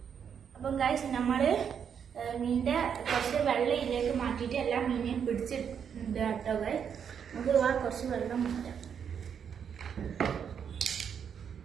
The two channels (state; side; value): quieter; left; 7.6 dB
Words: അപ്പം ഗൈസ് നമ്മള് മീനിന്റെ കുറച്ച് വെള്ളം ഇതിലേക്ക് മാറ്റിയിട്ട് എല്ലാ മീനെയും പിടിച്ചിട്ടുണ്ട് കേട്ടോ ഗൈസ്. നമുക്ക് വാ കുറച്ച് വെള്ളം മാറ്റാം.